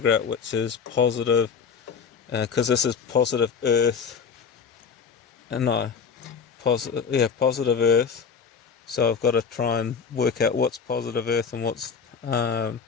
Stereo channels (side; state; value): right; quieter; 6.1 dB